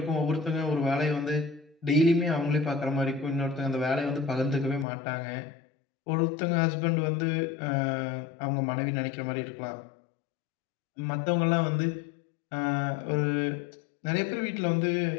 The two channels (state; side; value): drops out; right; at 4.9 s